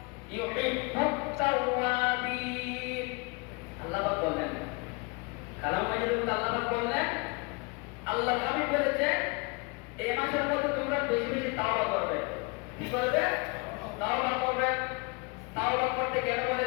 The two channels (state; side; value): quieter; right; 29.7 dB